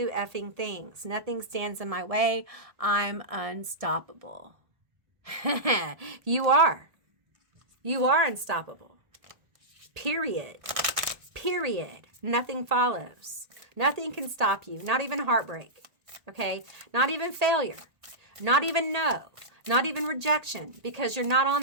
effing things, nothing stands in my way, I'm unstoppable. You are unstoppable. Period. Nothing follows. Nothing can stop you, not even heartbreak. Okay, not even failure, not even no, not even rejection, because you're not on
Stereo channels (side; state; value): left; late; 1.7 ms